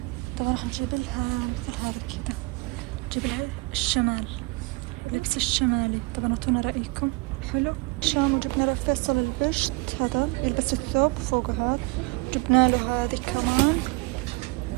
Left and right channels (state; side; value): quieter; left; 26.5 dB